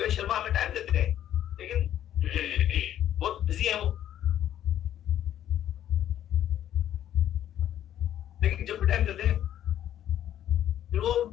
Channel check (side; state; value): right; quieter; 11.2 dB